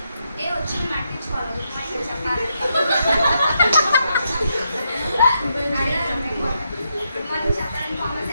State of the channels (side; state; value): both; inverted; correlation -0.81